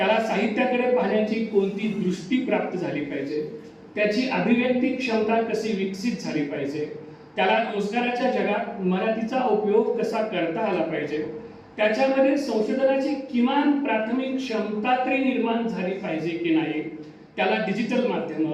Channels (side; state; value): both; identical; correlation 1.00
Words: साहित्याकडे पाहण्याची कोणती दृष्टी प्राप्त झाली पाहिजे, त्याची अभिव्यक्ती क्षमता कशी विकसित झाली पाहिजे, त्याला रोजगाराच्या जगात मराठीचा उपयोग कसा करता आला पाहिजे, त्याच्यामध्ये संशोधनाची किमान प्राथमिक क्षमता तरी निर्माण झाली पाहिजे की नाही, त्याला डिजिटल माध्यम,